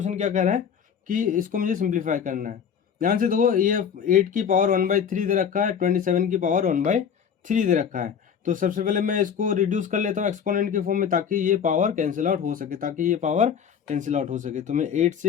क्या कह रहा है कि इसको मुझे सिंप्लीफाई करना है। ध्यान से देखो, ये 8 की पावर 1/3 दे रखा है, 27 की पावर 1/3 दे रखा है। तो सबसे पहले मैं इसको रिड्यूस कर लेता हूँ एक्सपोनेंट के फॉर्म में, ताकि ये पावर कैंसिल आउट हो सके, तो मैं 8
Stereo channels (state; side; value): quieter; right; 7.6 dB